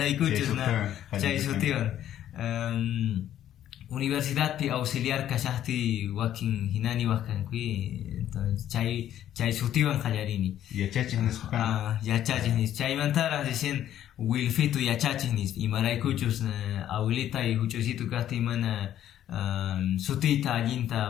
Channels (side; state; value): right; quieter; 11.5 dB